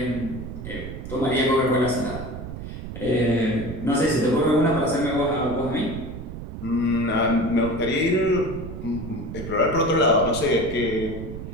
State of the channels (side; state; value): right; noise; rumble, 9 dB below the sound